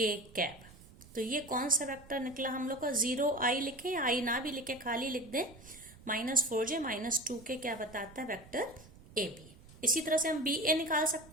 कैप। तो ये कौन सा वेक्टर निकला हम लोग का, 0 आई लिखे या आई ना भी लिखे, खाली लिख दें माइनस 4j माइनस 2k क्या बताता है, वेक्टर ए बी। इसी तरह से हम बी ए निकाल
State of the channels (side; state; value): right; noise; rumble, 21 dB below the sound